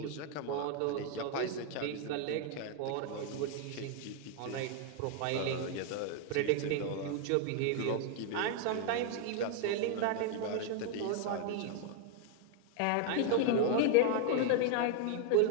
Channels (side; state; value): both; different; correlation 0.00